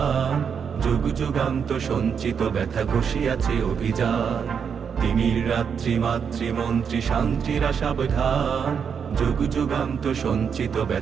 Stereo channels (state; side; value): quieter; left; 6.9 dB